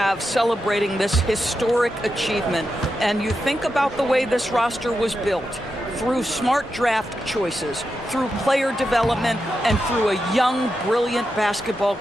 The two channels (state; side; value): normal; both; correlation 0.88